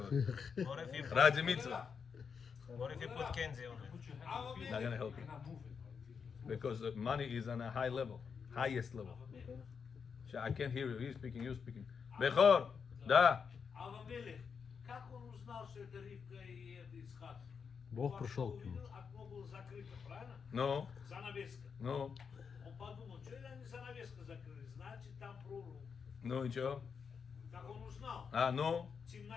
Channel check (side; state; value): right; quieter; 6.2 dB